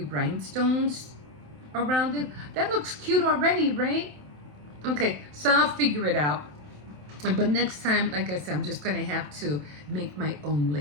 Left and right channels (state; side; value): late; left; 27 ms